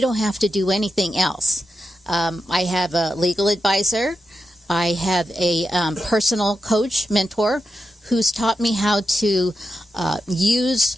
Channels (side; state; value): both; normal; correlation 0.88